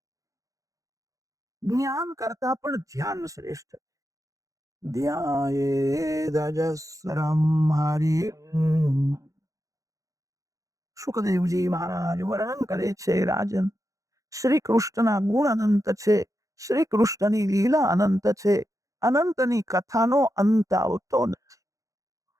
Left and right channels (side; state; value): left; late; 0.16 ms